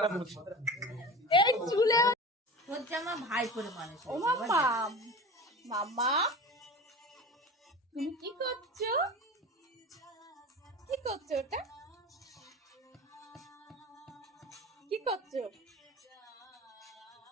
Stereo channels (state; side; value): normal; both; correlation 0.33